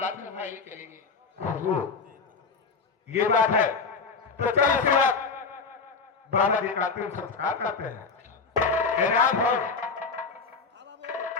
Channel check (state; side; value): quieter; right; 4.7 dB